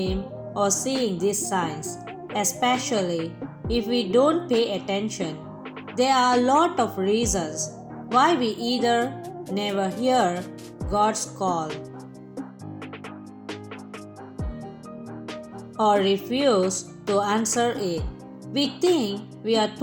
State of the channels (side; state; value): both; identical; correlation 1.00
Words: or seeing these signs, especially if we don't pay attention. There are a lot of reasons why we either never hear God's call or refuse to answer it. We think we are